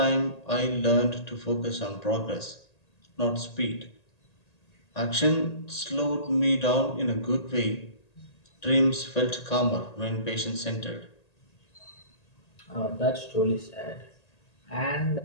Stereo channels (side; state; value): right; late; 1.8 ms